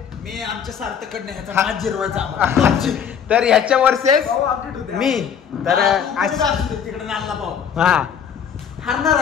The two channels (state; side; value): quieter; right; 7.8 dB